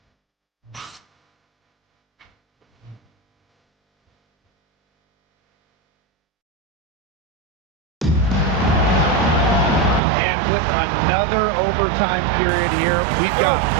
With another overtime period here, we've got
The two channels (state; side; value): drops out; left; at 10.0 s